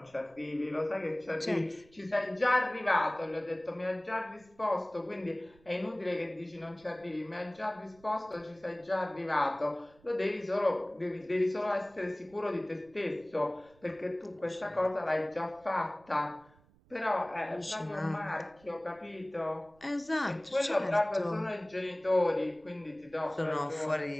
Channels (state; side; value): noise; right; rumble, 29 dB below the sound